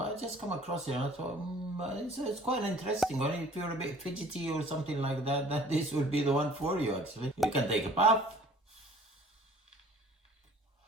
just come across it and I thought, it's quite interesting. Only if you're a bit fidgety or something like that, that this would be the one for you actually. You can take a puff,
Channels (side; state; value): both; normal; correlation 0.51